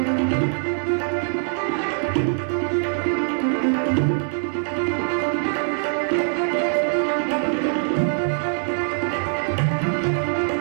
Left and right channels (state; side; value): silent; left; digital silence